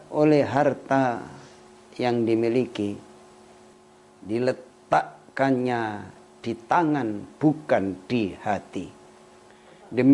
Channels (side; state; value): both; identical; correlation 1.00